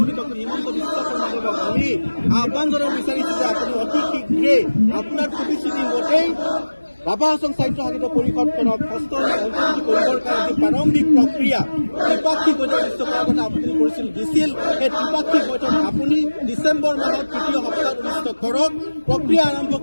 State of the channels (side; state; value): both; inverted; correlation -1.00